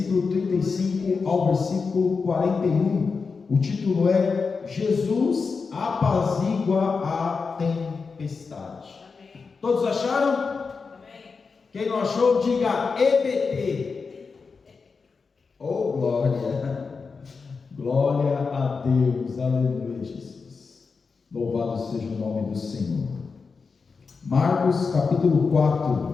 35 ao versículo 41. O título é Jesus apazigua a tempestade. Amém. Todos acharam? Amém. Quem não achou, diga EBT. Oh, glória! Glória a Deus, aleluia, Jesus. Louvado seja o nome do Senhor. Marcos capítulo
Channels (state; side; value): quieter; right; 4.9 dB